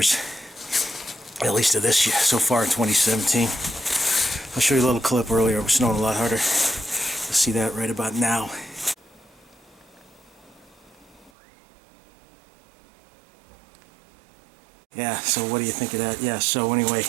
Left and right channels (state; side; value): drops out; left; at 11.3 s